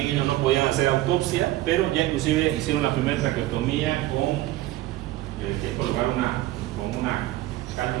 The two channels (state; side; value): quieter; left; 15.8 dB